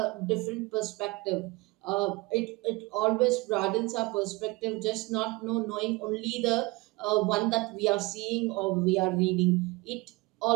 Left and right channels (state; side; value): quieter; left; 23.6 dB